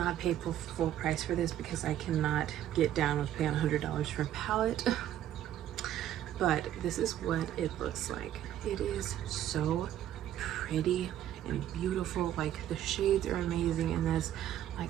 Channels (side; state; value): left; quieter; 11.7 dB